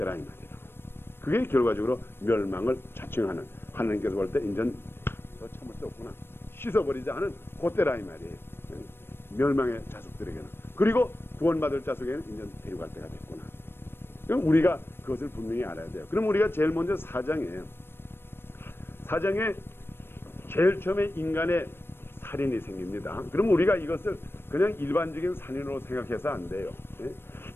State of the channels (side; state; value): right; late; 0.11 ms